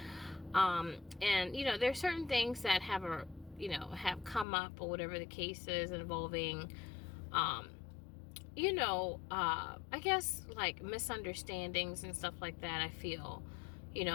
And there's certain things that have come up or whatever the case is involving I guess like misunderstandings and stuff like that. I feel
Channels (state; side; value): drops out; right; at 4.5 s